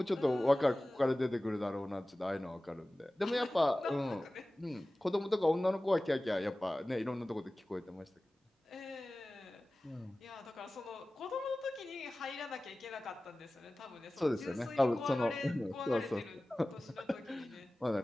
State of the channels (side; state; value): both; normal; correlation 0.97